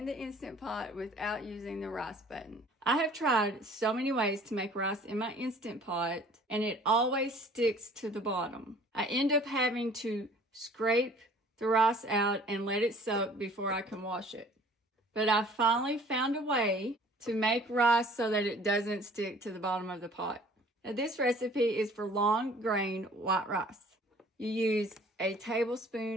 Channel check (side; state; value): both; normal; correlation 0.52